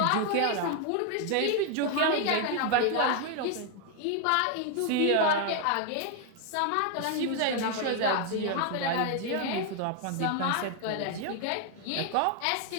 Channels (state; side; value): different; both; correlation 0.00